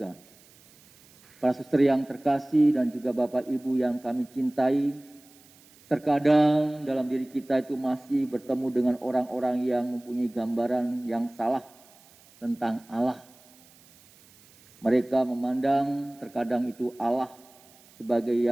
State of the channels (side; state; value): right; noise; hiss, 27 dB below the sound